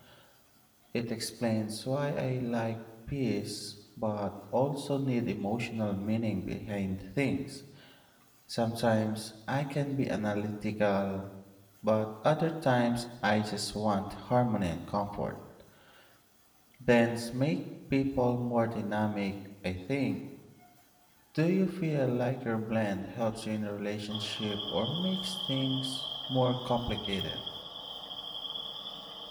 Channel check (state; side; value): identical; both; correlation 1.00